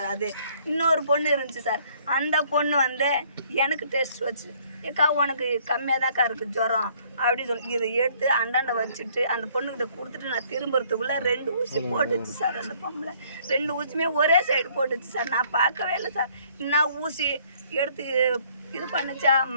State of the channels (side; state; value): both; inverted; correlation -0.62